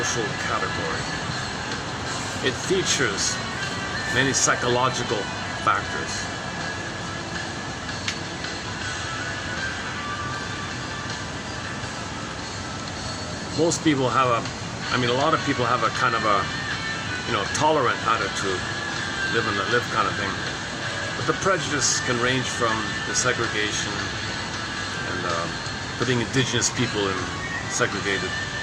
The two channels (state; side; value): identical; both; correlation 1.00